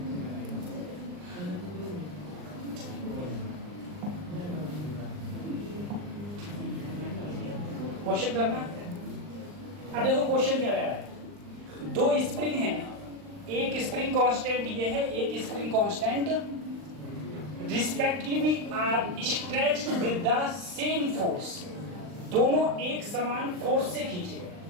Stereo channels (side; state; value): left; late; 39 ms